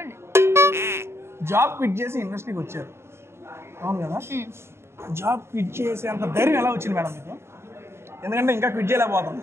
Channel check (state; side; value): late; left; 0.12 ms